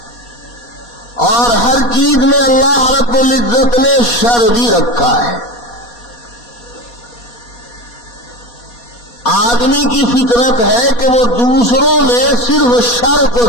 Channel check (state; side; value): late; right; 4.2 ms